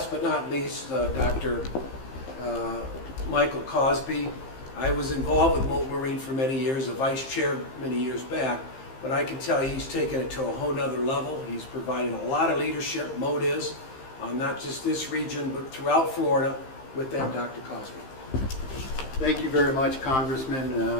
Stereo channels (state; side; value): late; right; 15 ms